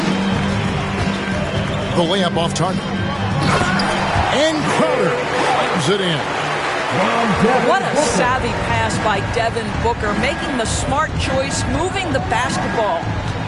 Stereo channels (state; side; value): identical; both; correlation 1.00